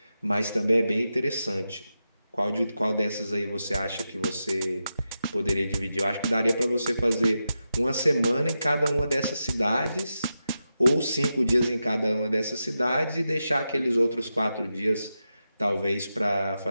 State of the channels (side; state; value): both; inverted; correlation -0.89